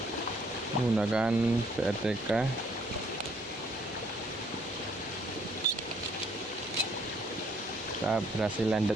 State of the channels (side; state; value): both; normal; correlation 0.64